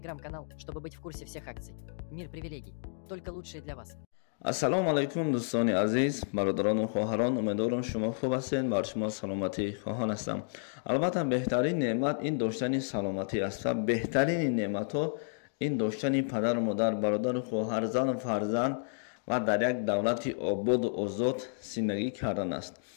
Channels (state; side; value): silent; right; digital silence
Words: чтобы быть в курсе всех акций. «Мир привилегий». Только лучшие для вас. ассалому алайкум дӯстони азиз, бародарону хоҳарон, умедворам шумо хуб ҳастед. бар шумо саломатӣ хоҳон ҳастам. албатта беҳтарин неъмат ин доштани саломатӣ аст ва беҳтарини неъматҳо ин доштани падару модар, бародару хоҳар, зану фарзанд ва дар як давлати ободу озод зиндагӣ кардан аст.